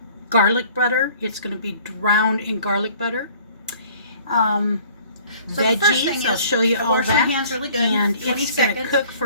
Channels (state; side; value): inverted; both; correlation -0.52